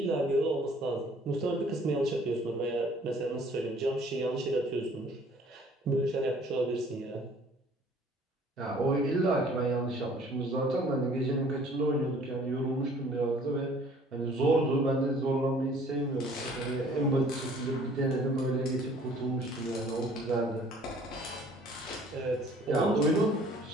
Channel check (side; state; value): both; normal; correlation 0.55